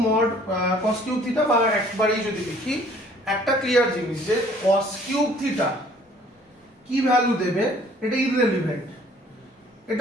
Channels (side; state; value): both; normal; correlation 0.56